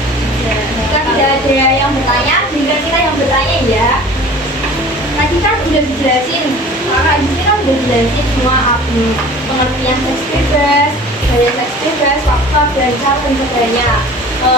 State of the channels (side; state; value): both; normal; correlation 0.43